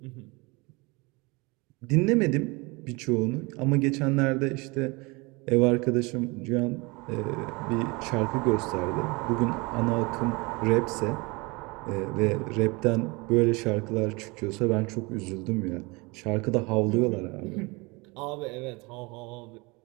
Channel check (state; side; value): quieter; left; 26.3 dB